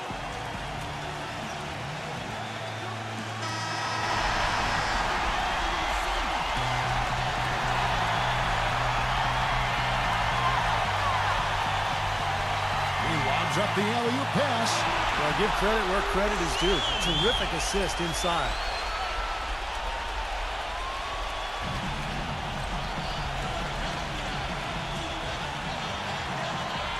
Up the alley-oop pass. Well, give credit where credit is due. Terrific assist inside.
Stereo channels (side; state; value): both; identical; correlation 1.00